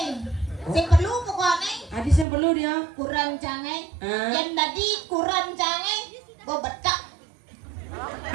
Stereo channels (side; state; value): left; drops out; at 2.2 s